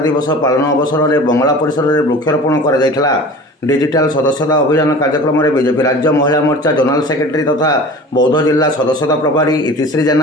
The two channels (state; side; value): normal; both; correlation 0.39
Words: पालन अवसर में बंगला परिसर में वृक्षारोपण कर डिजिटल सदस्यता अभियान कार्यक्रम में बीजेपी राज्य महिला मोर्चा जोनाल सेक्रेटरी तथा बौद्ध जिला सदस्यता प्रभारी इतिश्री